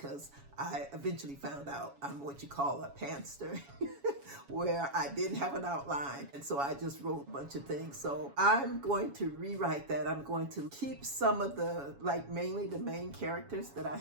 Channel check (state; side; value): late; left; 7.2 ms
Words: I eventually found out I'm what you call a pantster, where I didn't have an outline. And so I just wrote a bunch of things. So I'm going to rewrite that. I'm going to keep some of the, like mainly the main characters that I